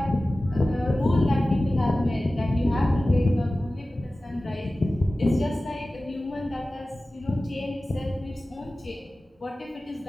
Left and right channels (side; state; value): both; normal; correlation 0.96